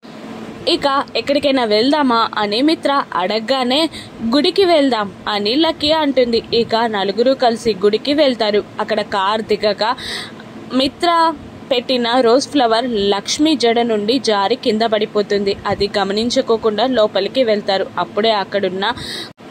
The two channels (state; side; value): identical; both; correlation 1.00